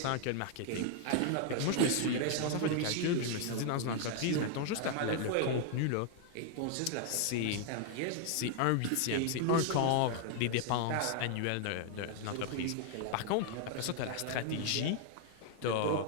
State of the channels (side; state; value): both; different; correlation 0.00